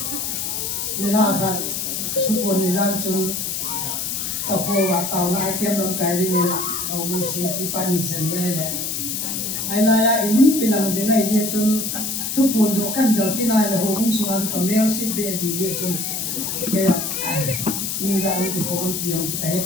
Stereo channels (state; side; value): noise; left; hiss, 2 dB below the sound